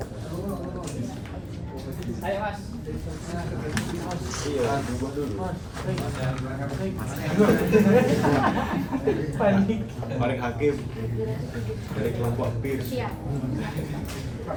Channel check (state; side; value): identical; both; correlation 1.00